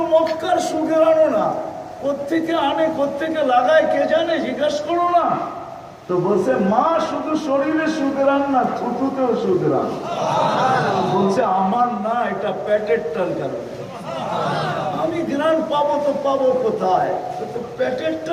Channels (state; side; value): identical; both; correlation 1.00